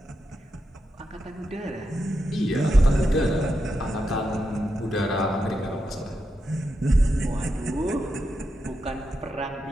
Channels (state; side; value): normal; both; correlation 0.86